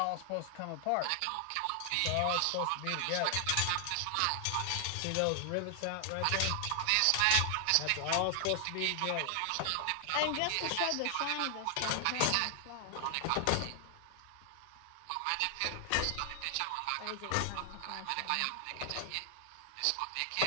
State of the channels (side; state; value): both; different; correlation 0.00